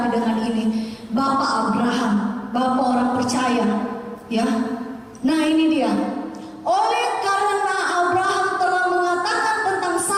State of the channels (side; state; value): both; identical; correlation 1.00